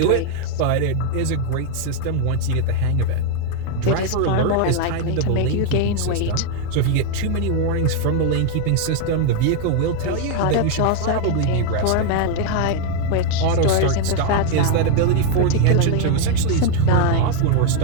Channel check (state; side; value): different; both; correlation 0.00